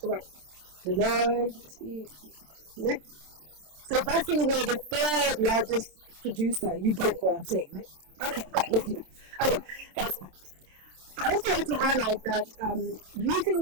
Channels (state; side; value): late; left; 27 ms